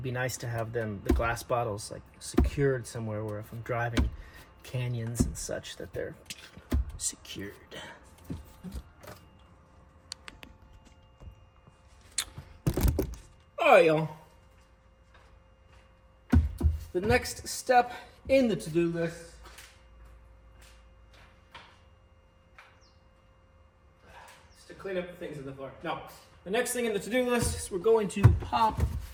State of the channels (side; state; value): both; identical; correlation 1.00